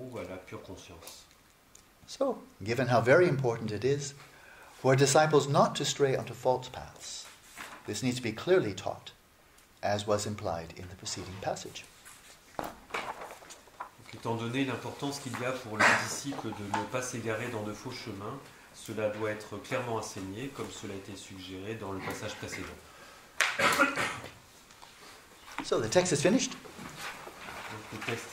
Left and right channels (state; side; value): identical; both; correlation 1.00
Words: à la pure conscience. So, given how very important it is for disciples not to stray onto false paths, this needs to be clearly taught, as was implied in the preceding passage. Donc, étant donné l'importance qu'il y a pour les disciples de ne pas s'égarer dans de faux chemins, cela doit être clairement enseigné, comme cela a été suggéré dans le passage précédent. So the text is finished. Donc, le texte